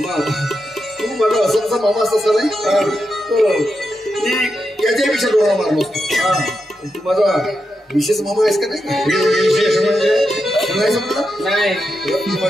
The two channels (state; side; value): normal; both; correlation 0.86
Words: तू माझा असंचा मामा असता नाही मी याच्यापेक्षा डोळा मारलो तू माझा विशेष मामा आहेस का नाही विशेष म्हणजे नाही समजलं नाही